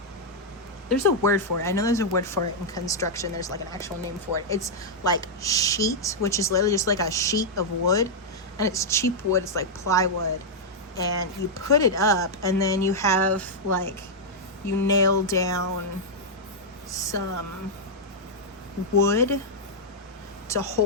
There's a word for it. I know there's a word for it in construction. There's like an actual name for it. It's like sheet, which is literally just like a sheet of wood, and it's cheap wood. It's like plywood, and you put it up, and then you have like, you nail down some wood to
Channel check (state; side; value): normal; both; correlation -0.05